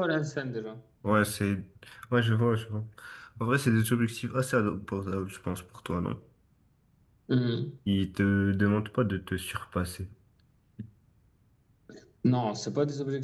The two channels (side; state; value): both; identical; correlation 1.00